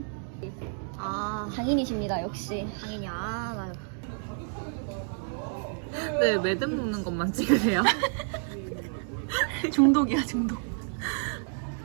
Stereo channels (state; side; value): silent; left; 56 dB below the other